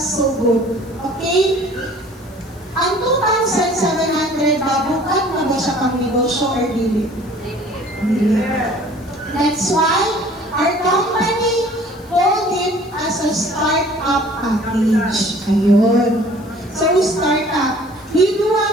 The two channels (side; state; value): left; noise; hiss, 27 dB below the sound